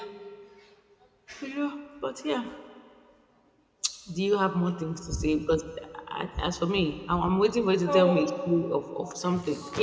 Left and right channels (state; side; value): identical; both; correlation 1.00